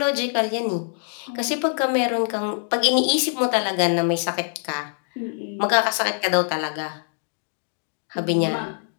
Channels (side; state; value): right; silent; digital silence